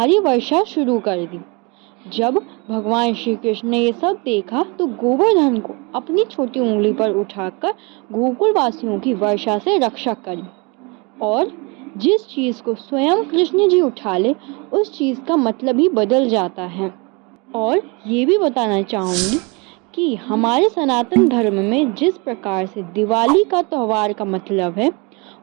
वर्षा शुरू कर दी। जब भगवान श्री कृष्ण ने ये सब देखा तो गोवर्धन को अपनी छोटी उंगली पर उठाकर गोकुल वासियों की वर्षा से रक्षा करी। और जिस चीज को स्वयं कृष्ण जी उठा ले उस चीज का मतलब ही बदल जाता है। और ये भी बताना चाहूंगी कि हमारे सनातन धर्म में जिस प्रकार से दिवाली का त्योहार का मतलब है,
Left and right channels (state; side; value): quieter; left; 29.4 dB